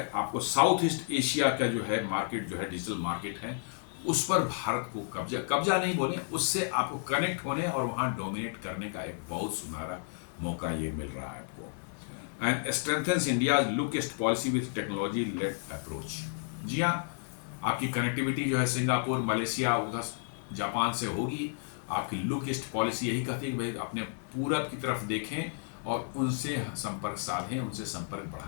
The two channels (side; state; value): right; silent; digital silence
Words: आपको साउथ ईस्ट एशिया का जो है मार्केट जो है डिजिटल मार्केट है उस पर भारत को कब्जा नहीं बोले, उससे आपको कनेक्ट होने और वहाँ डोमिनेट करने का एक बहुत सुनहरा मौका ये मिल रहा है आपको। And strengthens India's look east policy with technology led approach. जी हाँ, आपकी कनेक्टिविटी जो है सिंगापुर, मलेशिया, उधर जापान से होगी। आपकी लुक ईस्ट पॉलिसी यही कहती है कि भाई अपने पूरब की तरफ देखें और उनसे संपर्क साधें, उनसे संपर्क